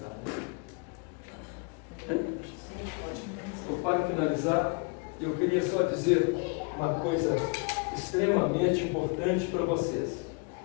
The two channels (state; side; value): quieter; right; 32.9 dB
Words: né? Para finalizar, eu queria só dizer uma coisa extremamente importante para vocês.